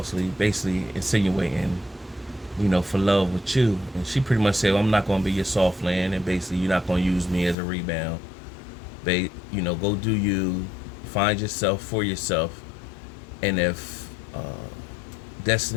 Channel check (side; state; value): right; drops out; at 7.6 s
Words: basically insinuating, for love with you. And she pretty much said, well, I'm not going to be your soft land, and basically you're not going to use me as a rebound. Go do you, find yourself for yourself, and if